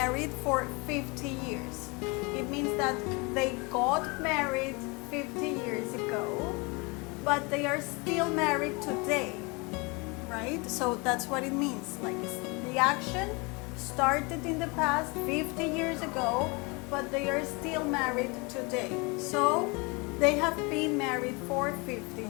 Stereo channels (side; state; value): right; quieter; 28.5 dB